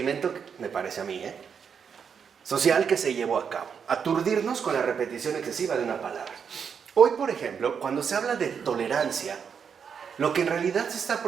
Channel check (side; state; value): left; quieter; 6.9 dB